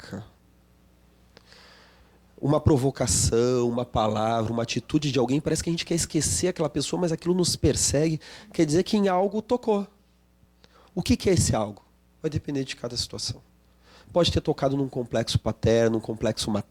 uma provocação, uma palavra, uma atitude de alguém, parece que a gente quer esquecer aquela pessoa, mas aquilo nos persegue, quer dizer que em algo tocou. O que é esse algo? Vai depender de cada situação. Pode ter tocado num complexo paterno, num complexo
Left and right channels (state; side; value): identical; both; correlation 1.00